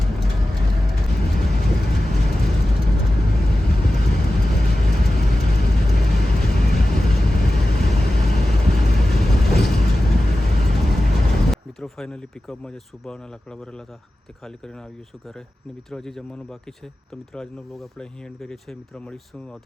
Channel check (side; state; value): both; normal; correlation 0.94